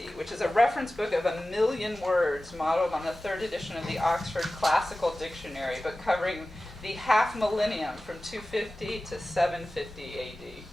which is a reference book of 1 million words modeled on the 3rd edition of the Oxford Classical Dictionary, but covering the half millennium from 250 to 750 AD.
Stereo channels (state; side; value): normal; both; correlation 0.96